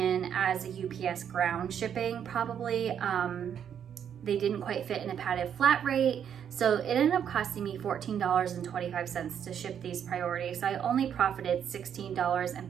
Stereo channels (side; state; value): left; quieter; 8.6 dB